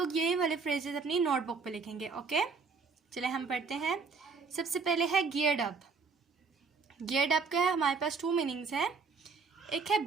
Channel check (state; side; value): quieter; left; 4.9 dB